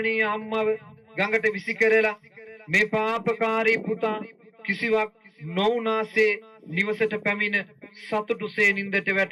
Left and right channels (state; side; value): identical; both; correlation 1.00